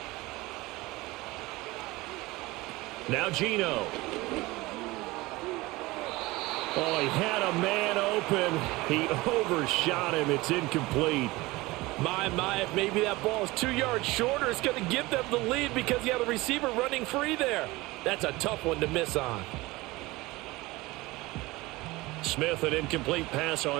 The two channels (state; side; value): quieter; left; 20.9 dB